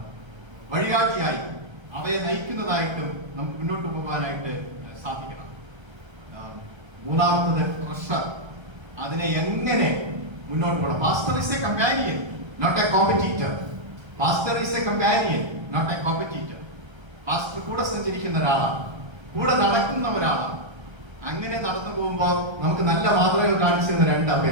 വഴികാട്ടിയായി അവയെ നയിക്കുന്നതായിട്ടും നമുക്ക് മുന്നോട്ട് പോകാനായിട്ട് സാധിക്കണം. മൂന്നാമത്തത് ട്രഷർ, അതിനെ എങ്ങനെ മുന്നോട്ട് പോകണം. Pastor is a companion, not a competitor. Pastor is a companion, not a competitor. Pastor കൂടെ സഞ്ചരിക്കുന്ന ഒരാളാണ്, കൂടെ നടക്കുന്ന ഒരാളാണ്. അങ്ങനെ നടന്നു പോകുമ്പോൾ നമുക്ക് നല്ല മാതൃകകൾ കാണിച്ചു തരുന്ന 2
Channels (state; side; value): late; left; 1.3 ms